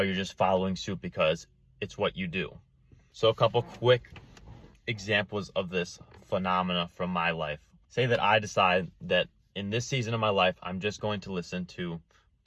you're just following suit because it's what you do. So a couple quick examples of this phenomena from my life. Say that I decide that in this season of my life, I'm just going to listen to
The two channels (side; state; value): both; identical; correlation 1.00